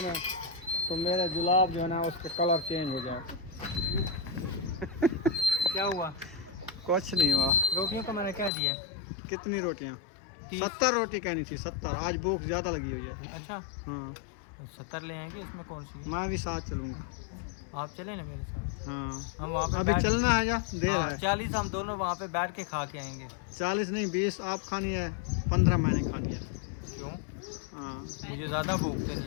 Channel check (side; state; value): right; drops out; at 8.5 s